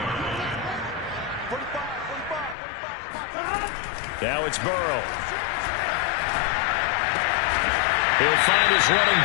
Now it's Burrow. He'll find his running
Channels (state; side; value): drops out; right; at 2.6 s